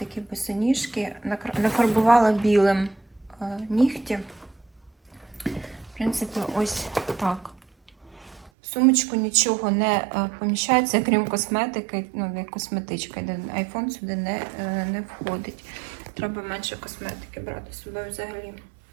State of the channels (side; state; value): left; drops out; at 8.5 s